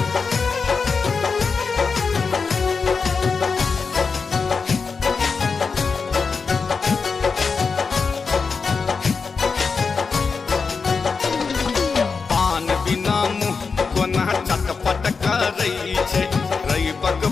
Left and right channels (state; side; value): quieter; right; 5.0 dB